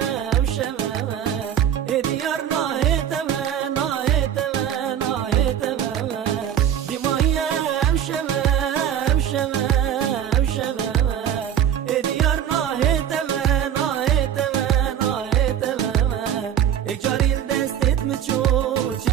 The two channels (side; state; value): left; quieter; 9.7 dB